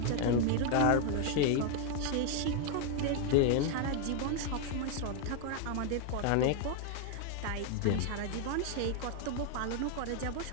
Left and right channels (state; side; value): different; both; correlation 0.01